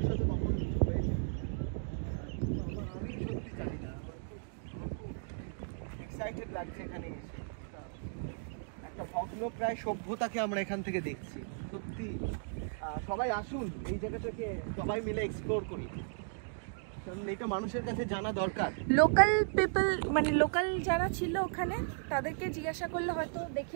কখন কিছু হয়েছে, আমি সত্যি জানি না। আমার খুব এক্সাইটেড লাগছে এখানে এসে। একটা ভগ্নপ্রায় সভ্যতাকে আমরা এখান থেকে দেখছি। সত্যি সবাই আসুন এই জায়গাটাকে সবাই মিলে এক্সপ্লোর করি, কারণ এটা মানুষের কাছে জানা দরকার। লোকাল পিপল মানে লোকাল যারা ছিল ওখানে তাদেরকে জিজ্ঞাসা করলে হয়তো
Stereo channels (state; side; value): silent; left; digital silence